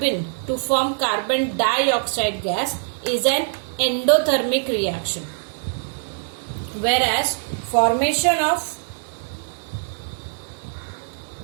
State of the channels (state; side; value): silent; left; digital silence